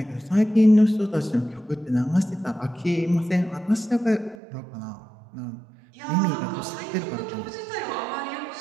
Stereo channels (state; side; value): drops out; left; at 4.4 s